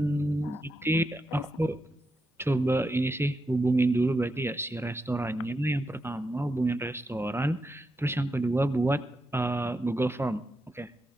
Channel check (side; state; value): both; normal; correlation 0.85